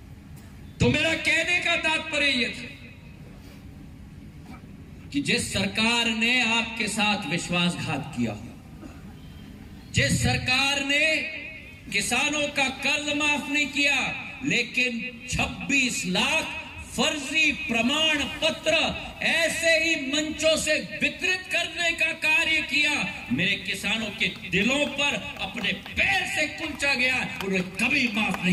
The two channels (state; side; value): identical; both; correlation 1.00